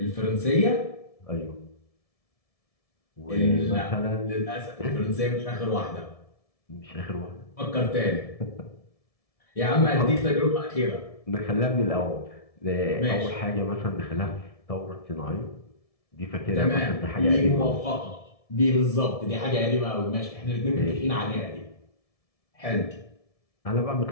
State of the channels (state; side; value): late; right; 1.7 ms